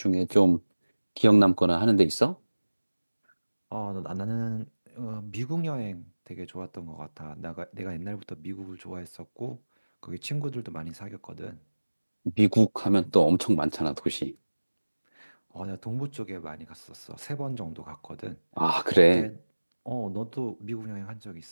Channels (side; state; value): both; inverted; correlation -1.00